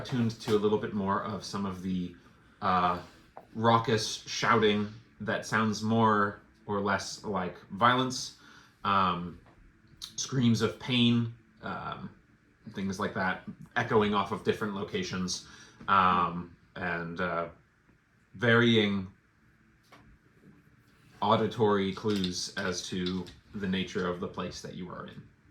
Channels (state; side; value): identical; both; correlation 1.00